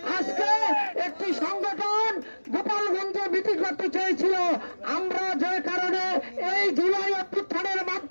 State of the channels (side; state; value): both; inverted; correlation -1.00